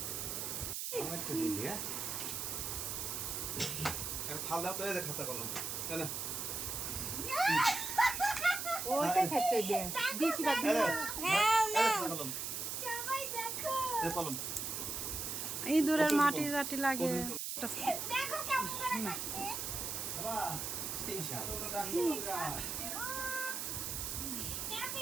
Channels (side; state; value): right; noise; hiss, 3 dB below the sound